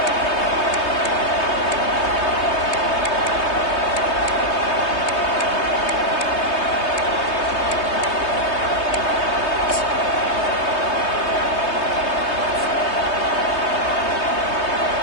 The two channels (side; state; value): right; late; 3.2 ms